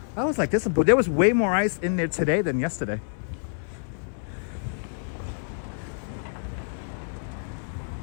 I was like, there was way more ice in there today than yesterday.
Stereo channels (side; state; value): right; silent; 60 dB below the other